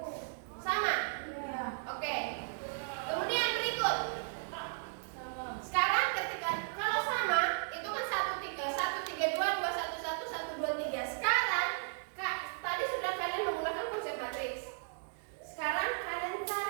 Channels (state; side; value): silent; left; digital silence